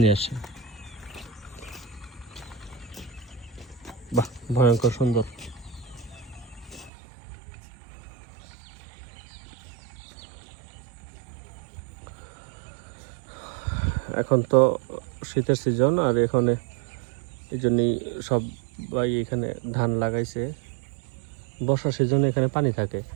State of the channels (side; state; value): left; drops out; at 6.9 s